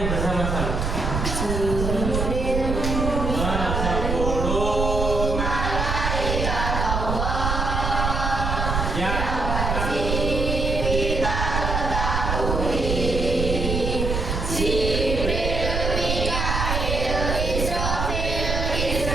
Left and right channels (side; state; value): right; noise; rumble, 1 dB below the sound